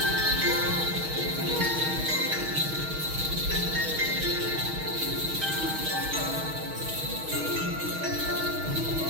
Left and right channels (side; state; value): left; late; 6.4 ms